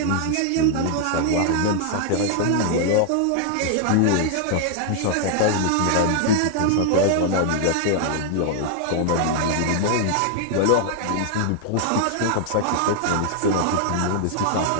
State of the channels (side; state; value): both; different; correlation 0.00